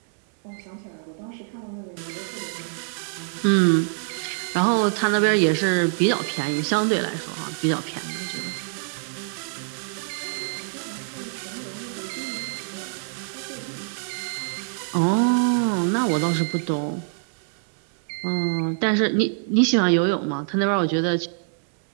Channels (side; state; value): left; silent; digital silence